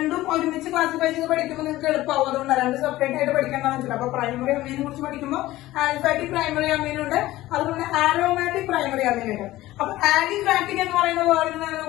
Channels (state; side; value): quieter; right; 16.6 dB